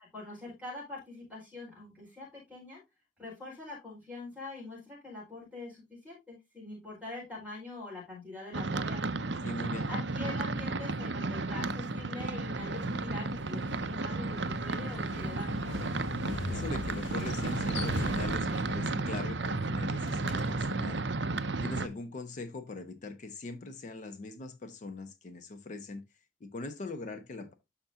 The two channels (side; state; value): both; normal; correlation 0.47